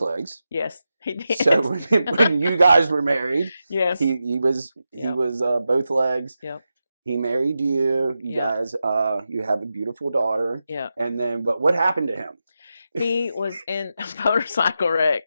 legs. Yes, he did. So when you guys were married, yes, he was both legs. Yep. He married you. You guys, you have a beautiful daughter. Yeah. And then, but what happened to him? He was in a motorcycle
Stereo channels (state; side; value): inverted; both; correlation -0.90